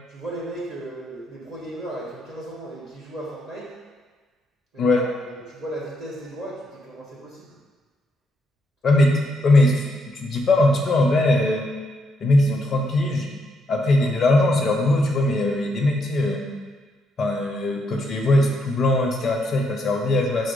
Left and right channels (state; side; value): normal; both; correlation 0.77